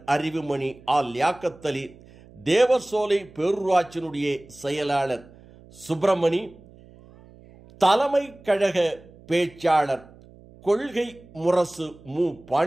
அறிவுமணி லியாக்கத்தலி, தேவசோலை பேரூராட்சியினுடைய செயலாளர் சுப்பிரமணி, தலைமை கழக பேச்சாளர் கொள்கை முரசு மு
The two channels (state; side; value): noise; right; hum, 23 dB below the sound